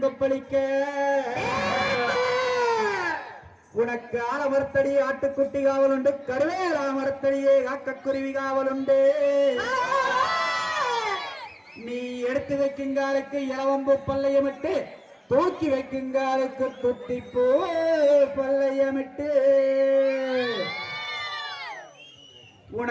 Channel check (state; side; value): identical; both; correlation 1.00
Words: கொப்பளிக்க. உனக்கு ஆலமரத்தடி ஆட்டுக்குட்டி காவல் உண்டு, கருவேலா மரத்தடியே காக்கக்குருவி காவல் உண்டு. நீ எடுத்து வைக்குங்காலுக்கு இளவம்பு பல்லையமிட்டு, தூக்கி வைக்குங்காலுக்கு துட்டிப்பூ பல்லையமிட்டு.